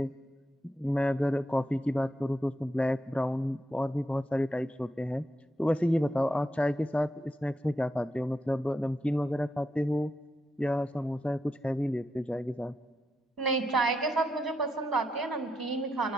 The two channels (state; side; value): normal; both; correlation 0.84